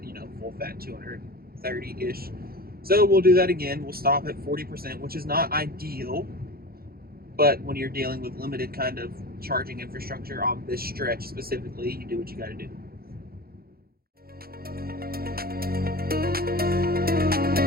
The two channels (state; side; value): late; left; 0.44 ms